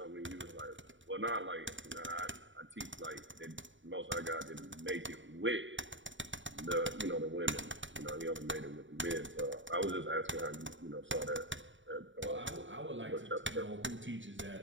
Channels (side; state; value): left; late; 0.55 ms